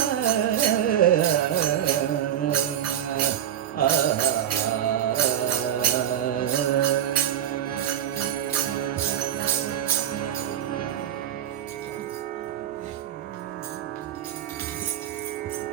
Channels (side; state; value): left; quieter; 10.9 dB